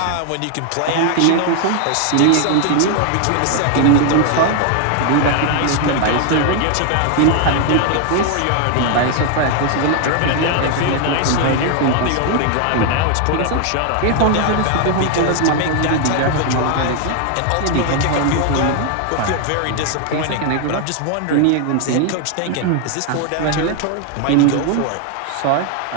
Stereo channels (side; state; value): both; different; correlation 0.00